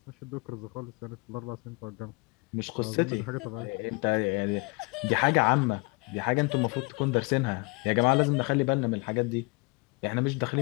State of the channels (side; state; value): right; quieter; 28.6 dB